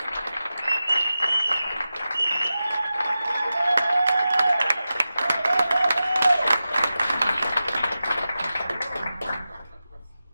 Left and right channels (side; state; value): both; inverted; correlation -0.93